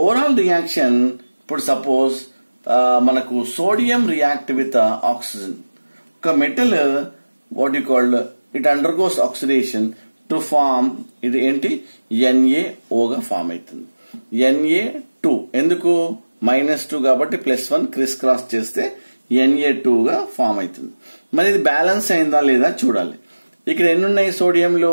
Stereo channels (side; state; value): both; inverted; correlation -1.00